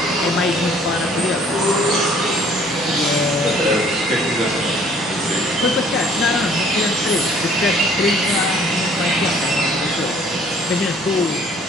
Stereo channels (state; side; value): normal; both; correlation 0.57